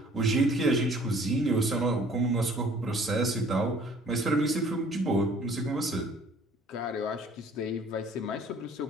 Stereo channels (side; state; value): both; normal; correlation 0.55